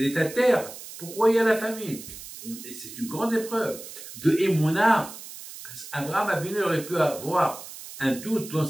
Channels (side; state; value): right; noise; hiss, 13 dB below the sound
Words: est à terre, pourquoi il y a la famine? Et c'est une grande épreuve de Emouna. Parce qu'Abraham Abinu aurait pu avoir un doute dans